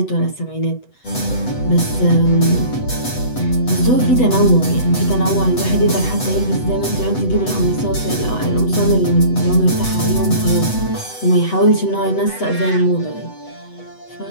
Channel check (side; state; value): right; late; 8.0 ms